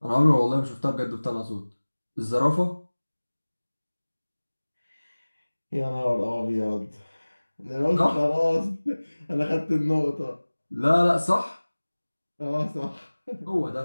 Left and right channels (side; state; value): both; inverted; correlation -1.00